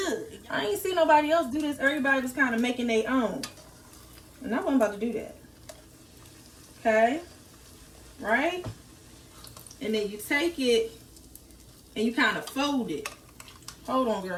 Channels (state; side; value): identical; both; correlation 1.00